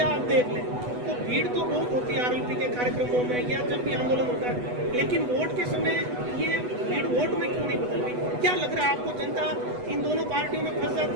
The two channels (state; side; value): late; left; 8.1 ms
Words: आप देख लें तो भीड़ तो बहुत होती है आरएलपी के कार्यक्रमों में या जब भी आंदोलन होता है, लेकिन वोट के समय ये भीड़ वोट में क्यों नहीं बदल रही? क्या लग रहा है आपको, जनता इन दोनों पार्टियों में फंस